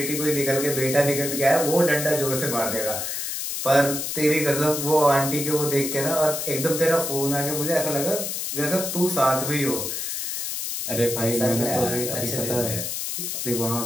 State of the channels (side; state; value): left; noise; hiss, 3 dB below the sound